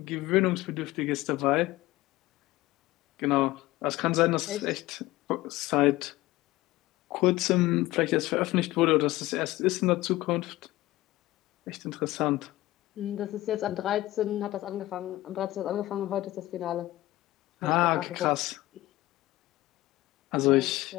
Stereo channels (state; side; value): quieter; right; 17.6 dB